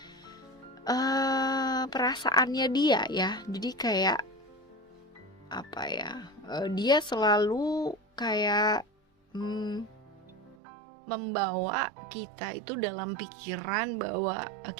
perasaannya dia ya. Jadi kayak apa ya, dia selalu kayak membawa kita itu dalam pikiran bahwa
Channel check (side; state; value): left; drops out; at 10.6 s